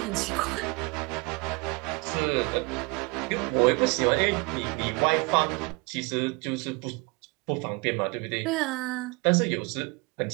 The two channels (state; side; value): quieter; left; 28.3 dB